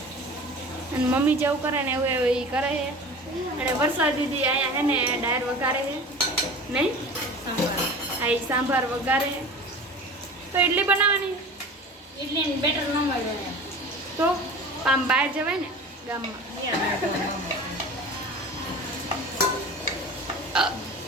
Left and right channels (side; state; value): both; normal; correlation 0.37